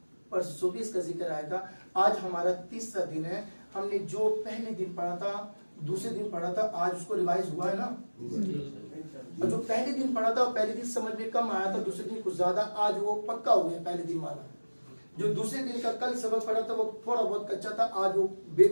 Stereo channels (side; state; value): both; inverted; correlation -1.00